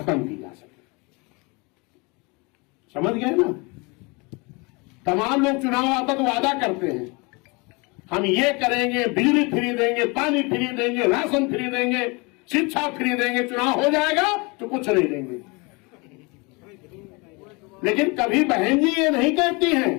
की जा सके। समझ गए ना? तमाम लोग चुनाव आता तो वादा करते हैं, हम ये करेंगे, बिजली फ्री देंगे, पानी फ्री देंगे, राशन फ्री देंगे, शिक्षा फ्री देंगे। चुनाव हो जाएगा तो कुछ नहीं देंगे। लेकिन कभी बहन जी ये नहीं कहती हैं,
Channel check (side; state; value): right; quieter; 28.1 dB